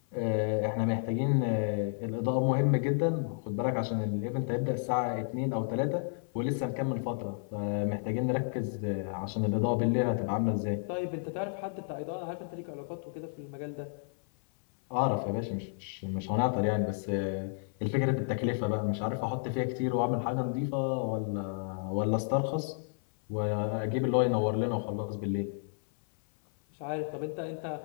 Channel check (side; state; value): right; silent; 56 dB below the other